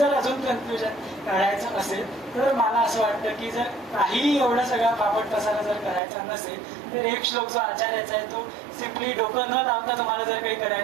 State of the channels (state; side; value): drops out; left; at 6.0 s